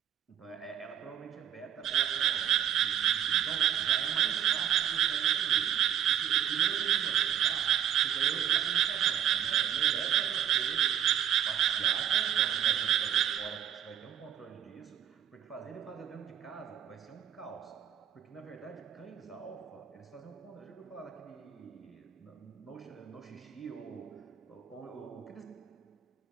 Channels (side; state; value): left; quieter; 9.8 dB